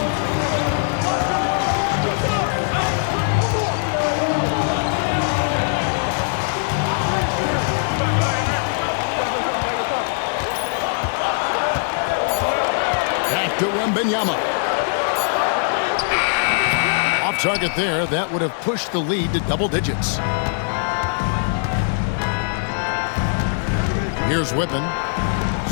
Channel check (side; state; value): right; silent; digital silence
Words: Back to Wembanyama. Off target there. That would have pushed the lead to double digits. Here's Whippen.